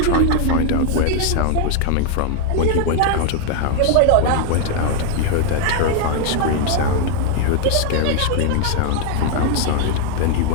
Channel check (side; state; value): both; different; correlation 0.00